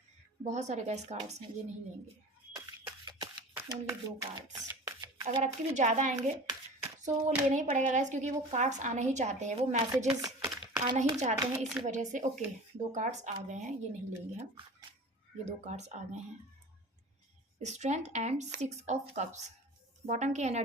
बहुत सारे गैस कार्ड्स हैं, ये नहीं लेंगे, ओनली 2 कार्ड्स। अगर आपके भी ज़्यादा आएंगे तो वो लेना ही पड़ेगा गैस, क्योंकि वो कार्ड्स आना ही चाहते हैं, वो मैसेजेस आना ही चाहते हैं, इसी वजह से। ओके, 2 कार्ड्स आ गए हैं, ये नहीं लेंगे हम, ये 2 कार्ड्स आ गए हैं। Strength and 6 of cups. Bottom की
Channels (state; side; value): normal; both; correlation 0.38